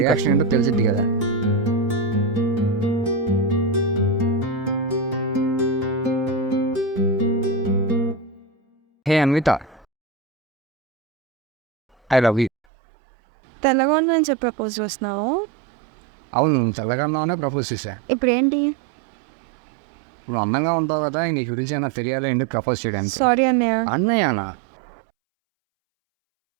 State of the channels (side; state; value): left; drops out; at 12.5 s